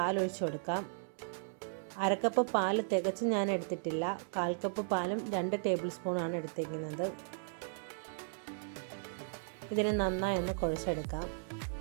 ഒഴിച്ചു കൊടുക്കാം. അരക്കപ്പ് പാൽ തികച്ച് ഞാൻ എടുത്തിട്ടില്ല. 1/4 കപ്പ് പാലും 2 ടേബിൾ സ്പൂണാണ് എടുത്തിരിക്കുന്നത്. ഇതിനെ നന്നായി ഒന്ന് കുഴച്ചെടുക്കാം.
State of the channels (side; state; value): left; silent; digital silence